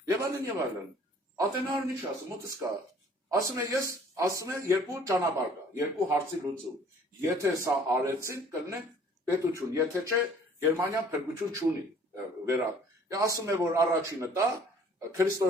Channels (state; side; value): normal; both; correlation 0.55